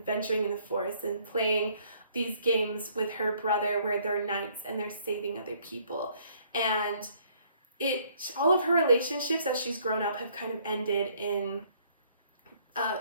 in the forest and playing these games with her brother where they're knights and they're saving other people. And all of her relationships as she's grown up have kind of ended in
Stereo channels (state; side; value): inverted; both; correlation -0.63